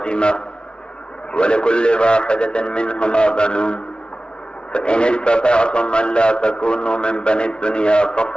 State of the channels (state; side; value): late; right; 0.055 ms